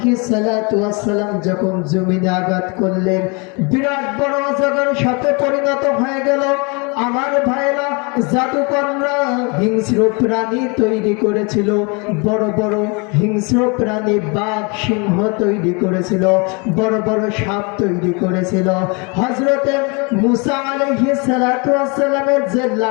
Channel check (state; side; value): quieter; right; 31.2 dB